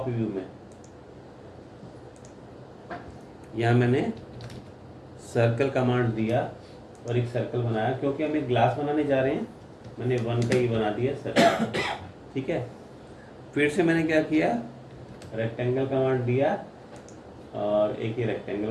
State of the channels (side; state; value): both; identical; correlation 1.00